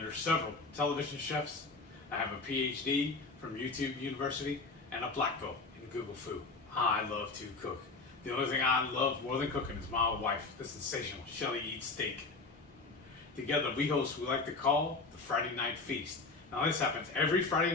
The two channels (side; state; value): right; quieter; 3.9 dB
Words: several television chefs. I have a PhD from YouTube University and a black belt in Google Food. I love to cook. The only thing I love more than cooking is my wife, the sensational Shelly Eats Steak. Together we host what we like to call the Friday Night Feast. Now this happens every Friday